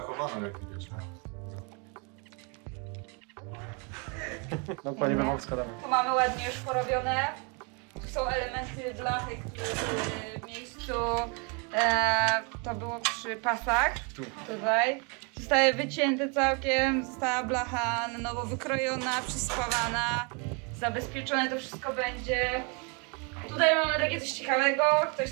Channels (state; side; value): quieter; left; 34.0 dB